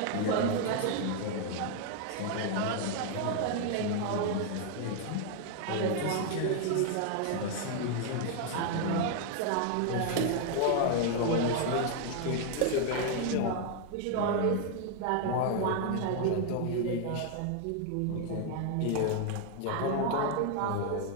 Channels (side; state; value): both; different; correlation 0.00